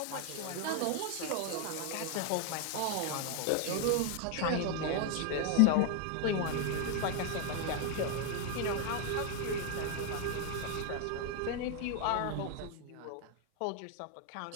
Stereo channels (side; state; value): both; different; correlation 0.01